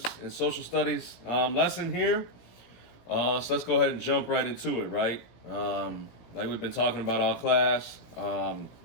in social studies lesson here. So let's go ahead and jump right into it, right? Like we've been talking about all class,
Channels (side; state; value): right; late; 17 ms